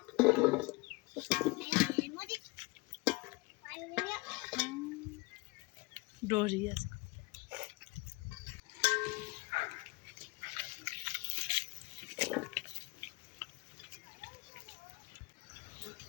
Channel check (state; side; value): quieter; right; 25.4 dB